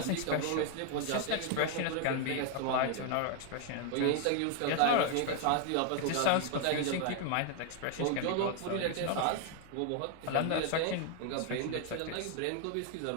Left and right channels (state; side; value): different; both; correlation 0.01